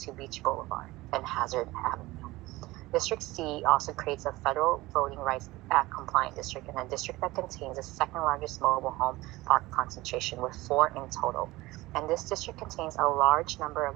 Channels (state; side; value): quieter; left; 19.5 dB